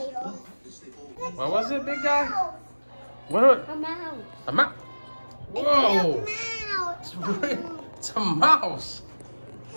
What was it, big guy? What? A mouse. A mouse. It's Whoa! a mouse. It's a mouse.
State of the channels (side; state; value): both; inverted; correlation -1.00